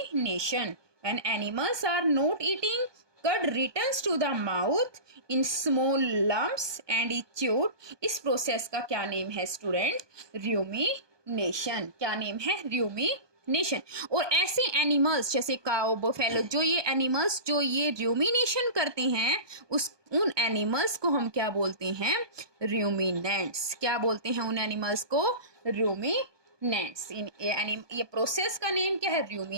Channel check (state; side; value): late; left; 1.2 ms